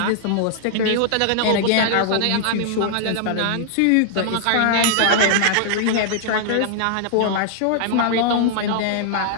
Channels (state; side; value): different; both; correlation -0.01